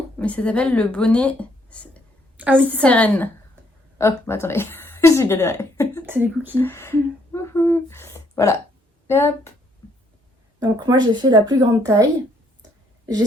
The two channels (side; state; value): both; normal; correlation 0.69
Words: mais ça s'appelle le bonnet Sérène. Oh, bah attendez, j'ai galéré. C'est des cookies. Voilà. Et hop. Donc moi j'ai fait la plus grande taille. J'ai